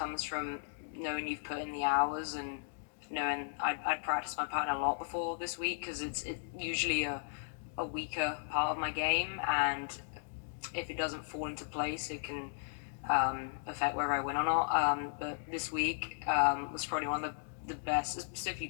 from knowing you've put in the hours and knowing I'd practiced my pattern a lot before this week, because it's usually a weaker part of my game, and if it doesn't fall into place, it can affect whether I win or not. But this week was probably one of the best, specifically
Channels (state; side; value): silent; right; digital silence